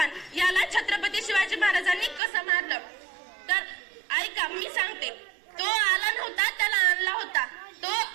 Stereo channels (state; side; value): drops out; left; at 2.2 s